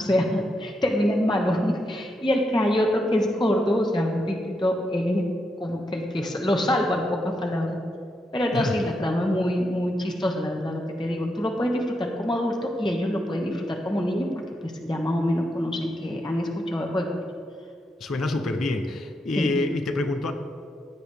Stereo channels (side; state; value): both; normal; correlation 0.83